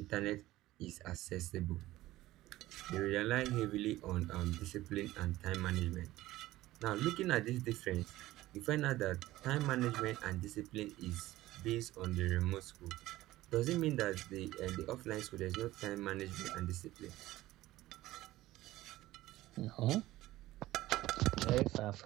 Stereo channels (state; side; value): quieter; left; 16.5 dB